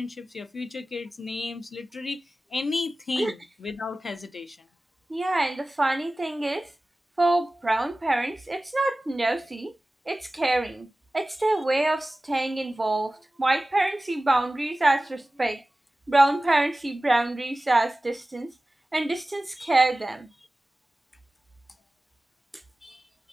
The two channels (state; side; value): normal; both; correlation 0.97